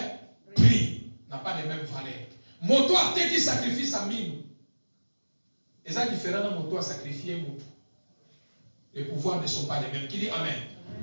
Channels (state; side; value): inverted; both; correlation -1.00